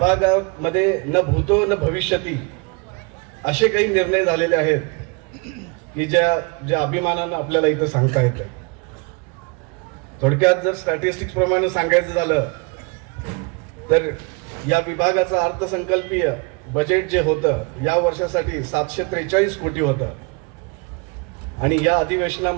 न भूतो न भविष्यती असे काही निर्णय झालेले आहेत की ज्या अभिमानानं आपल्याला इथं सांगता येतं. थोडक्यात जर स्टॅटिस्टिक्स प्रमाणे सांगायचं झालं तर या विभागाचं अर्थसंकल्पीय बजेट जे होतं या वर्षासाठी 743 कोटी होतं आणि या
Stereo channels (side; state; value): left; quieter; 30.7 dB